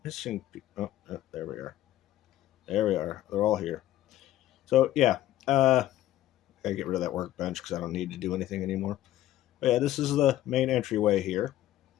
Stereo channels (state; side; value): quieter; right; 13.7 dB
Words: missing people. Oh, there we are. There we are. They're all here. So, yeah. I gotta get rid of that workbench because I don't need to do anything anymore. But yeah, this is the main entryway here.